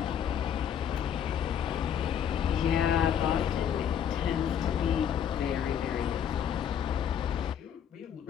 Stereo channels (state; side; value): quieter; right; 8.8 dB